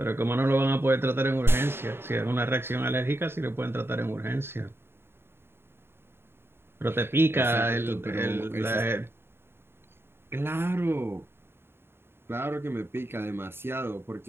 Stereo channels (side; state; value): left; late; 0.11 ms